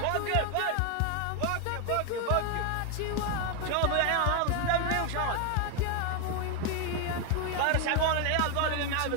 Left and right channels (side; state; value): both; different; correlation 0.01